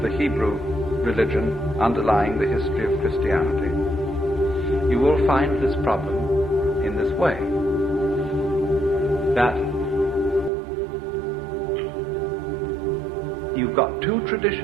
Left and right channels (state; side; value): drops out; left; at 10.5 s